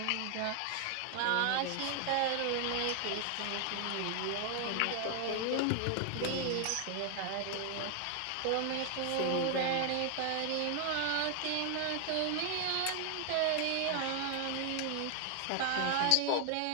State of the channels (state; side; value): different; both; correlation 0.00